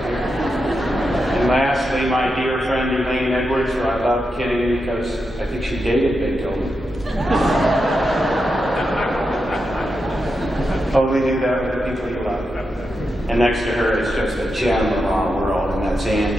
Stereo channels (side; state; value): both; normal; correlation 0.87